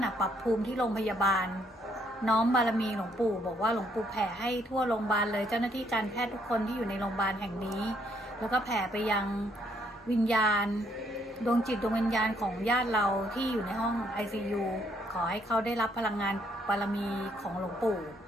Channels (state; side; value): normal; both; correlation 0.69